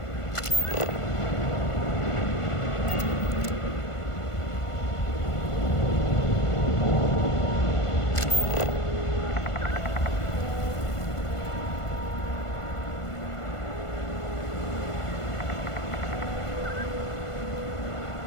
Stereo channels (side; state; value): right; late; 1.5 ms